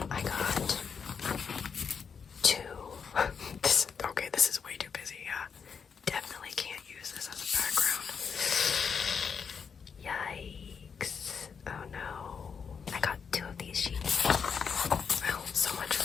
I got 2. This is way too busy. Definitely can't use this as a background. Yikes. Oh no. I got 2 of these sheets. Well, so much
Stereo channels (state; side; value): quieter; right; 6.3 dB